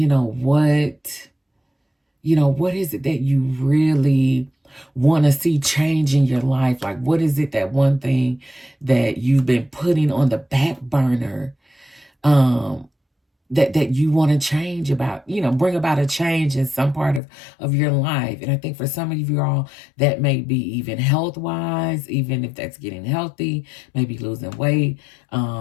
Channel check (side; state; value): right; drops out; at 17.2 s